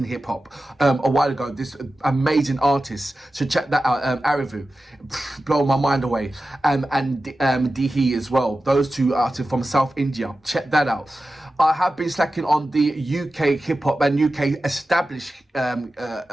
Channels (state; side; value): normal; both; correlation 0.94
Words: hip hop a while ago. This amazing artist, so check that out. ArrDee, blow my mind away. And Dihi as well. Those 2 artists from South India. Check that out. I have been slacking on the UK hip hop and UK established